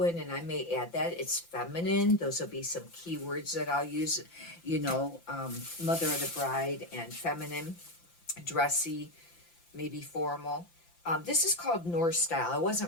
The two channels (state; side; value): late; right; 5.8 ms